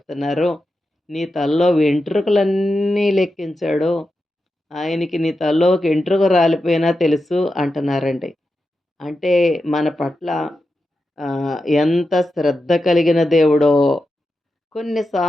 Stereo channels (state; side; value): normal; both; correlation 0.89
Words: నీ తలలో వెంట్రుకలన్నీ లెక్కించాడు. ఆయనకి నీ తలలో ఒక ఎంట్రుక రాలిపోయినా తెలుసు అంటున్నారండి. అంటే మన పట్ల ఎంత శ్రద్ధ కలిగిన దేవుడో.